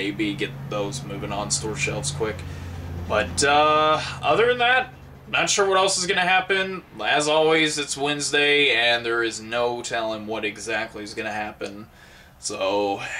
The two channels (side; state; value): both; identical; correlation 1.00